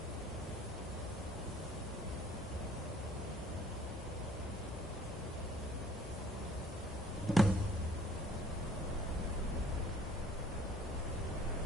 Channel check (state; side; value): normal; both; correlation 0.56